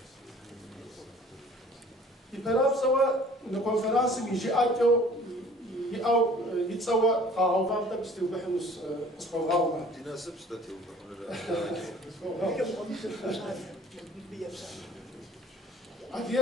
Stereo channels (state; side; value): normal; both; correlation 0.50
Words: يبراب سوا نكونفرنس يجي أكو أو يتسوى قاعو فامتا بستيو بحنوس اسمه غاوما تناسب ستاتيو